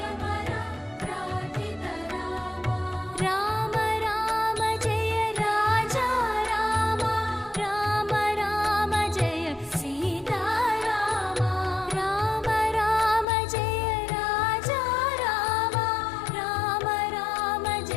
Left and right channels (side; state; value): right; drops out; at 13.2 s